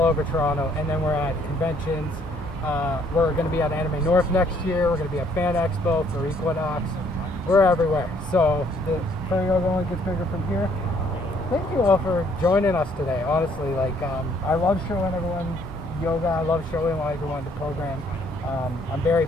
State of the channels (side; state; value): both; normal; correlation 0.64